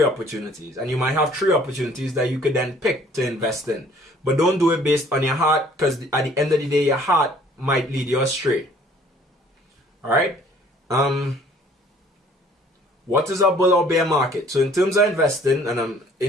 opportunities, and you might have 3 opportunities that you could then pick to invest in. But don't do it based on your heart, because at the end of the day, your heart might lead you astray. All right. What is a bull or bear market? So in terms of investing, and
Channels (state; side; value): normal; both; correlation 0.57